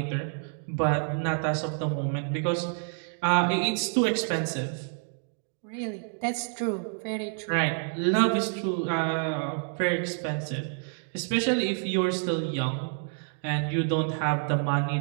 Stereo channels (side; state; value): left; silent; 59 dB below the other